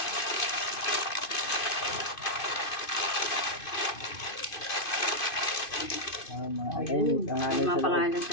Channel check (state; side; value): late; right; 2.5 ms